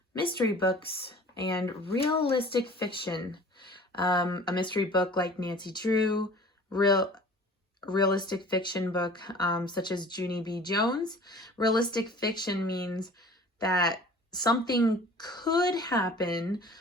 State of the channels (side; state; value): both; normal; correlation 0.46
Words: mystery books, and realistic fiction. A mystery book like Nancy Drew, realistic fiction book such as Junie B. Jones. Realistic fiction means that something could happen,